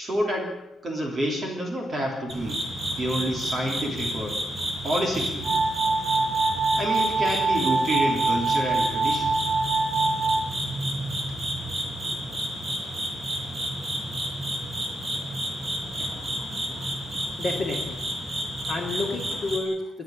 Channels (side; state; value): both; normal; correlation 0.84